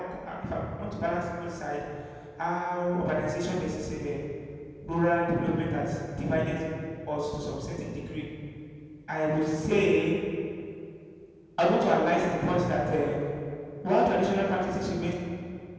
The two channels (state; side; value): identical; both; correlation 1.00